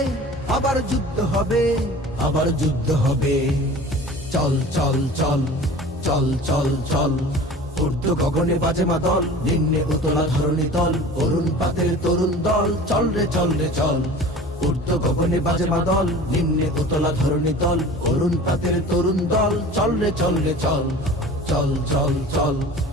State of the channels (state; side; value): normal; both; correlation 0.41